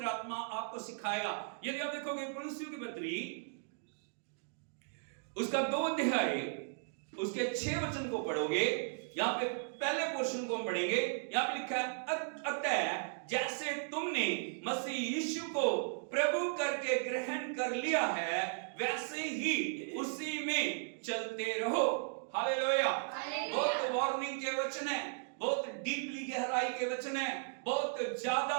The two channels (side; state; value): left; silent; digital silence